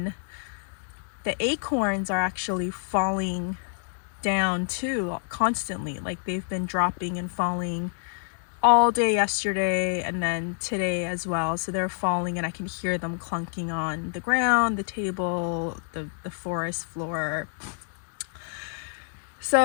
the acorns are actually falling down too, constantly. Like, they've been dropping and falling all day yesterday and then today as well. So they're falling and I can hear them clunking on the ground, the table, the forest floor.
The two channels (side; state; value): right; silent; digital silence